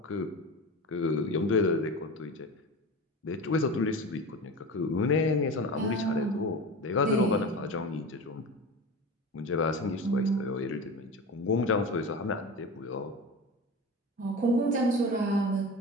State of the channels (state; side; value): normal; both; correlation 0.29